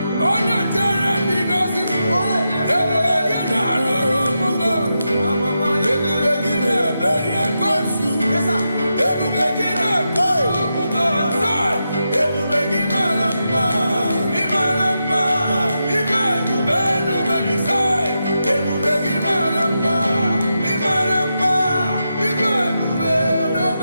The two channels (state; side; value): inverted; both; correlation -0.87